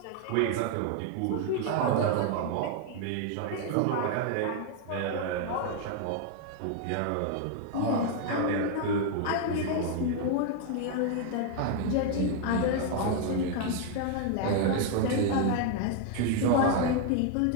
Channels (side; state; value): both; different; correlation 0.01